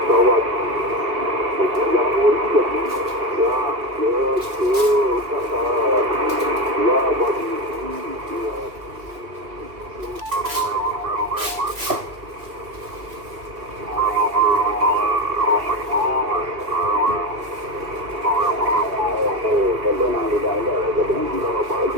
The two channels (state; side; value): late; left; 2.2 ms